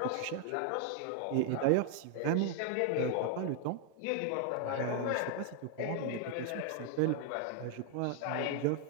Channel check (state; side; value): different; both; correlation 0.00